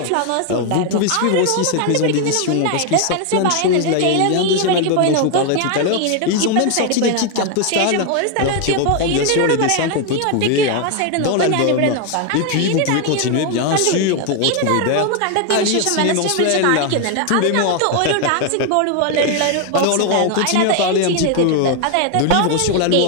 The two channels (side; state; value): both; different; correlation 0.01